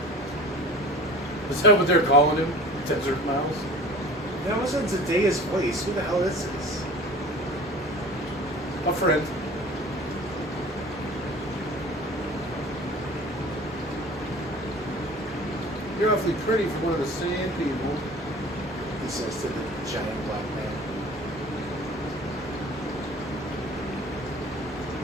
Is that what they're calling him? Desert Mouse? That wasn't Zendaya's voice. Who the hell is this? A friend. You're awfully pretty for one of the sand people. He says to the giant black man.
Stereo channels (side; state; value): both; normal; correlation 0.42